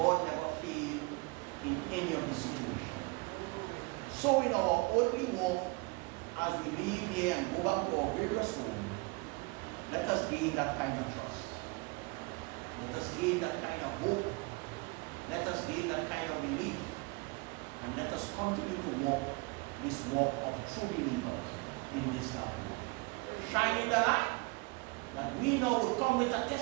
never failed in any of the situation. So in our earthly walk, as we leave here and go back to our various homes, let us gain that kind of trust. Let us gain that kind of hope. Let us gain that kind of belief. And let us continue to walk this walk of true believers in this life. Shining the light, that we now will come with a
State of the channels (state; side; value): quieter; left; 27.5 dB